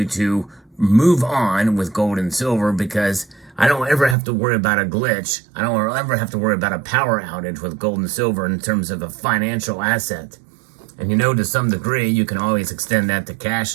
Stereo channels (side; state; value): left; drops out; at 4.2 s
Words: to move on with gold and silver, because I don't ever have to worry about a glitch. I don't ever have to worry about a power outage with gold and silver in terms of a financial asset. And to some degree, you can always extend that to cash